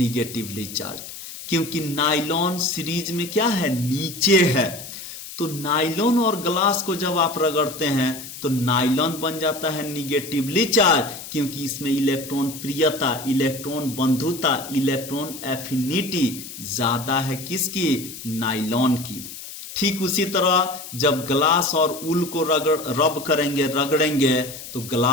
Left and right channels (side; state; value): left; noise; hiss, 12 dB below the sound